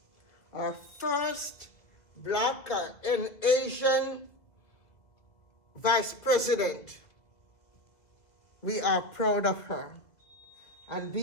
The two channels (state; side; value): late; right; 2.0 ms